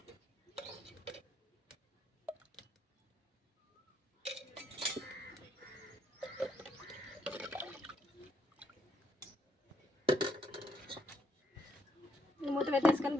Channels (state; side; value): normal; both; correlation 0.73